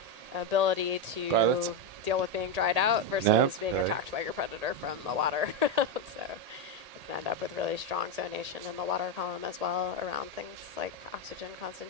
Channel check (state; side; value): late; left; 1.8 ms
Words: ability to deal with being dried out versus being attacked by your predator from the water. So you can end up with really strong zonation in the water column as well around things like oxygen